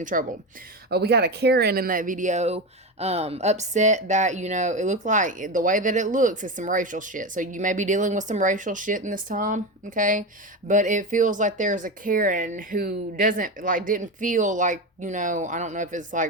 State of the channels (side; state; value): both; normal; correlation 0.19